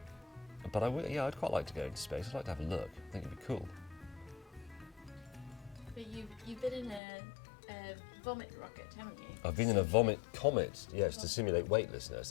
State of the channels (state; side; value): drops out; right; at 7.0 s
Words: I'd quite like to go into space. I'd like to have a look. I think it'd be cool. But you've been in a vomit rocket, haven't you? I've been in a vomit Comet, yes, to simulate weightlessness.